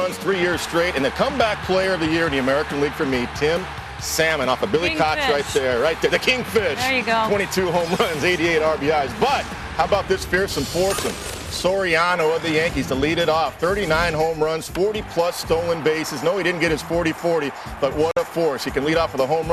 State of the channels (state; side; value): identical; both; correlation 1.00